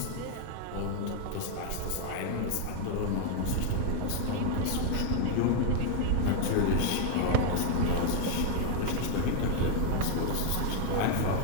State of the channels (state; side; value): different; both; correlation 0.01